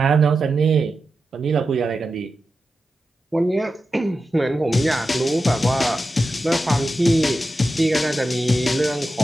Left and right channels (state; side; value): normal; both; correlation 0.91